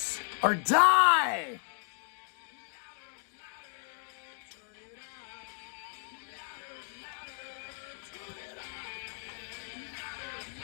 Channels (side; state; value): right; silent; digital silence